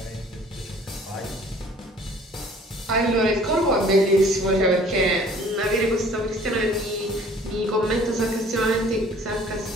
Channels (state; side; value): normal; both; correlation 0.53